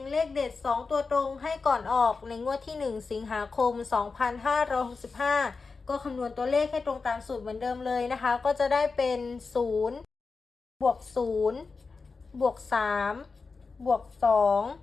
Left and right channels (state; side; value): quieter; right; 4.4 dB